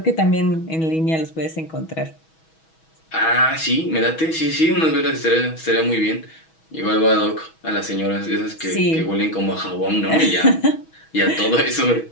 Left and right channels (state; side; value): late; right; 6.2 ms